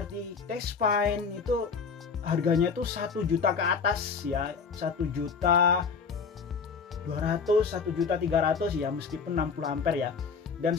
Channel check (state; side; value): quieter; right; 5.6 dB